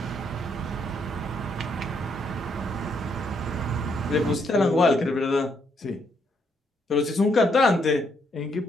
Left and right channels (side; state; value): both; normal; correlation 0.74